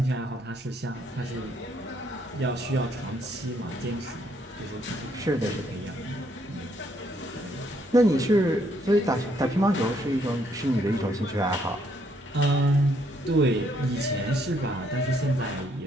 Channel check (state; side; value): normal; both; correlation 0.70